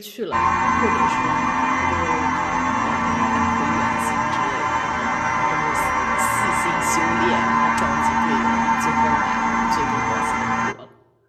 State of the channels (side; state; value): both; identical; correlation 1.00